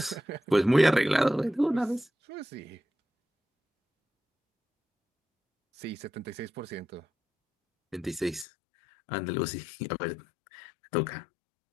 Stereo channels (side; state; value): right; drops out; at 8.5 s